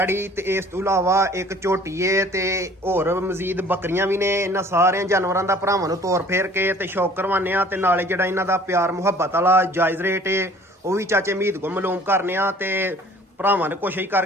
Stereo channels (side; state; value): both; normal; correlation 0.52